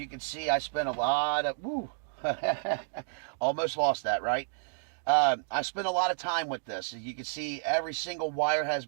can see, I spent a lot of, almost lost that, right? I spent a lot of time with this. As you can see, every single wire has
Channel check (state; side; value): silent; left; digital silence